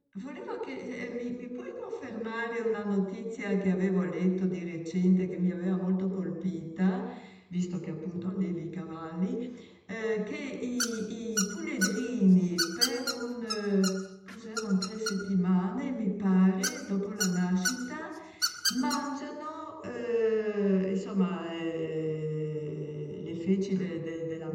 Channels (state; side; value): identical; both; correlation 1.00